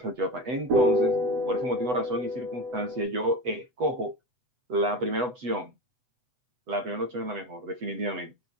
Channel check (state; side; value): late; left; 8.0 ms